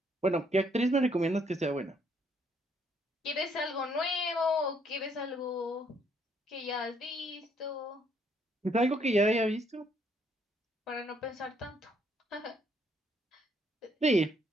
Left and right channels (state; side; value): normal; both; correlation 0.69